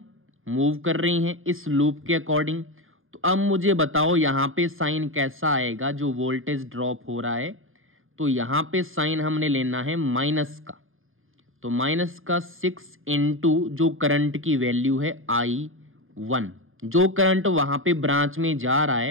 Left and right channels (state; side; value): late; left; 0.59 ms